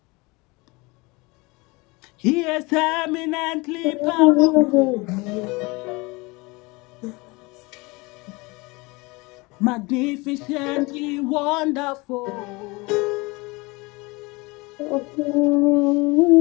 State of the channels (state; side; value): quieter; right; 25.0 dB